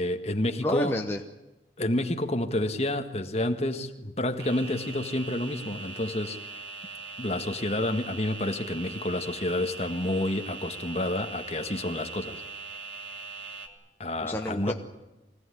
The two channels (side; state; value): both; normal; correlation 0.56